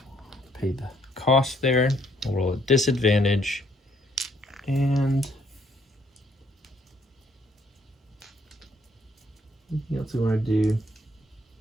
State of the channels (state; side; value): normal; both; correlation 0.68